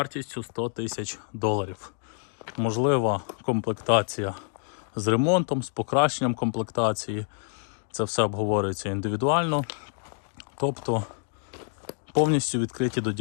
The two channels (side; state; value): right; silent; 60 dB below the other